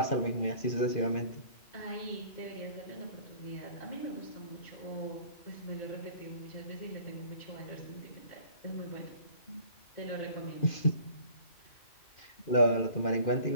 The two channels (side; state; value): right; late; 2.4 ms